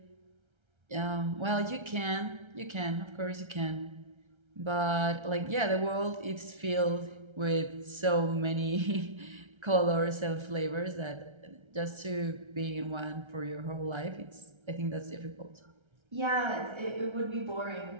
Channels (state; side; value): late; left; 1.3 ms